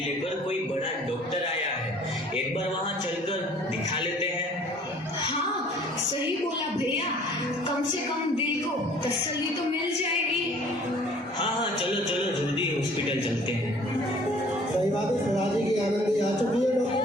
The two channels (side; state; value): both; normal; correlation 0.53